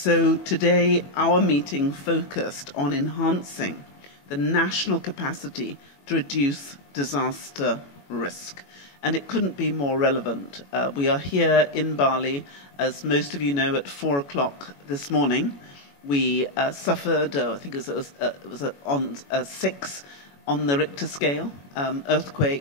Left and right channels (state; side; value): late; right; 21 ms